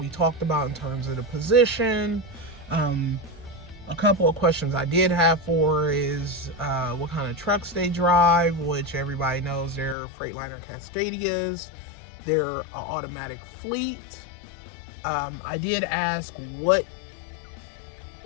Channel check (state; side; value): drops out; right; at 10.0 s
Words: talked about in terms of the position. A couple of questions I did have for is what kind of trucks they drive, which everybody knows they're Freightliner Cascadias. They're an automatic fleet. I did ask what